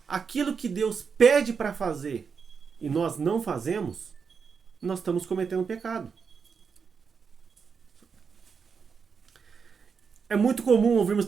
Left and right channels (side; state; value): left; quieter; 5.9 dB